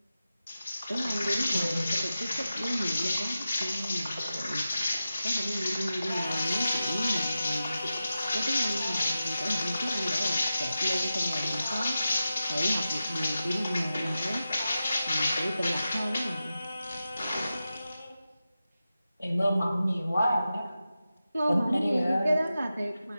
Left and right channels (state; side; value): inverted; both; correlation -0.92